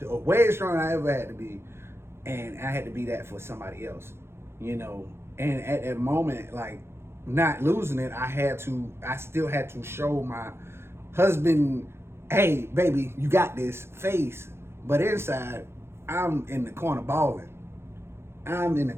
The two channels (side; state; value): left; late; 0.12 ms